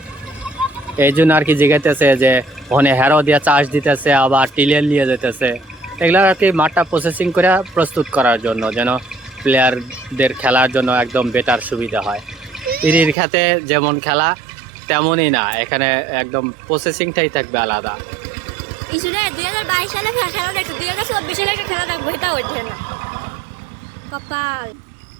এই জন্য আর কি জিগাইতেছে যে ওখানে হেরো দিয়ে চাষ দিতেছে, আবার টিলার নিয়ে যেতেছে। এগুলো আর কি মাঠটা প্রসেসিং করে প্রস্তুত করার জন্য, যেন প্লেয়ারদের খেলার জন্য একদম বেটার সুবিধা হয়। ইরির খেতে যেমন খেলা তেমনই না, এখানে একদম প্রসেসিংটাই থাকবে আলাদা। ইসুরে 2022 সালে খেলা দেখছি, 2024 সালে খেলা দেখবো, এটা হচ্ছে না কপাল।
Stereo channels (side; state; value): left; drops out; at 13.2 s